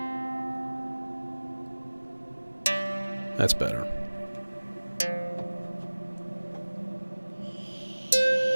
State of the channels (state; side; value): inverted; both; correlation -1.00